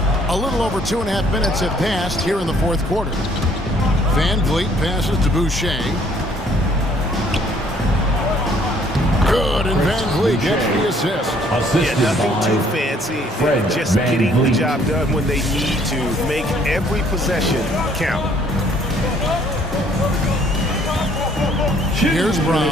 A little over 2.5 minutes have passed here in the fourth quarter. Van Vliet passes to Boucher. Good, and Van Vliet gets the assist. Yeah, nothing too fancy. Just getting the job done when they need to. Make every possession count. Here's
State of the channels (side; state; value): both; normal; correlation 0.62